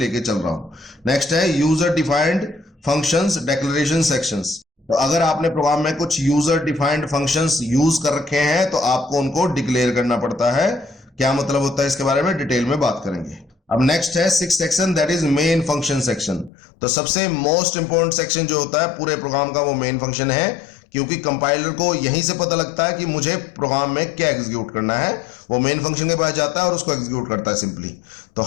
चल रहा हूं। नेक्स्ट है user defined functions declaration sections. तो अगर आपने प्रोग्राम में कुछ यूजर डिफाइंड फंक्शंस यूज कर रखे हैं तो आपको उनको डिक्लेयर करना पड़ता है। क्या मतलब होता है इसके बारे में डिटेल में बात करेंगे। अब नेक्स्ट है six section, that is main function section. तो सबसे मोस्ट इंपॉर्टेंट सेक्शन जो होता है पूरे प्रोग्राम का वो मेन फंक्शन है, क्योंकि कंपाइलर को यहीं से पता लगता है कि मुझे प्रोग्राम में क्या एग्जीक्यूट करना है। वो मेन फंक्शन के पास जाता है और उसको एग्जीक्यूट करता है सिंपली। तो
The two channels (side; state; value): right; drops out; at 16.5 s